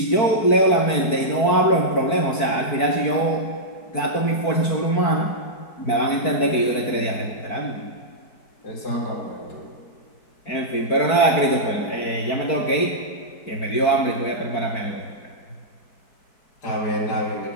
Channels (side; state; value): right; late; 4.5 ms